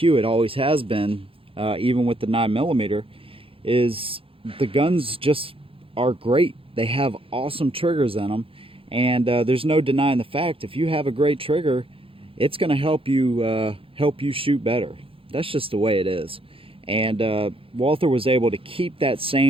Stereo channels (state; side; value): late; left; 0.27 ms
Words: it always has been, even with the 9mm, is the guns just are great. They have awesome triggers in them. And there's no denying the fact, if you have a great trigger, it's going to help you shoot better. That's just the way it is. And Walther was able to keep that